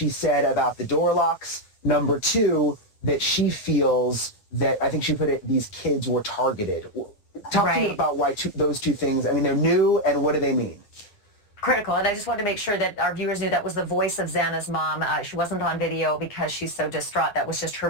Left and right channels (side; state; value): right; late; 9.7 ms